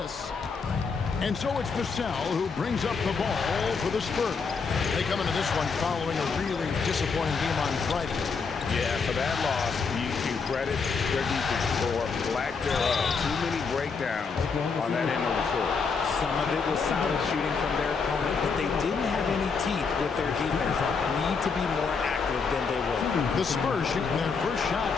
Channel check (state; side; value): quieter; right; 5.2 dB